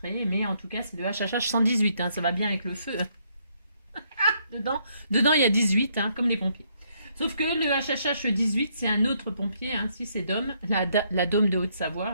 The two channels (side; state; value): both; inverted; correlation -0.72